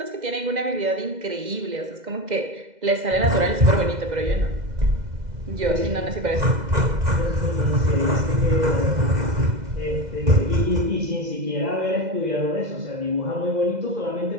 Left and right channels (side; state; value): left; late; 2.0 ms